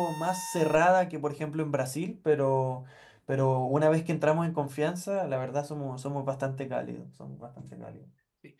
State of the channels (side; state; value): both; identical; correlation 1.00